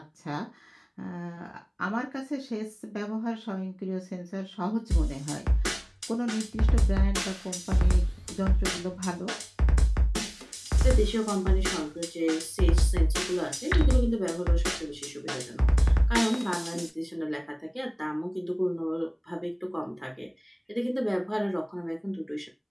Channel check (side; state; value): both; identical; correlation 1.00